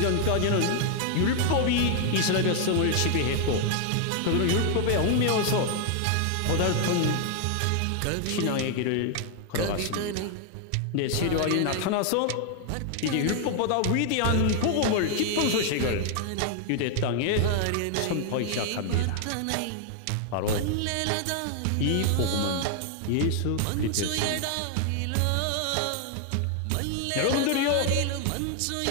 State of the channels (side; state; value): both; different; correlation 0.00